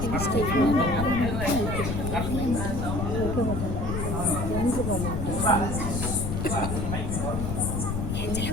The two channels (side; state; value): left; noise; rumble, 2 dB below the sound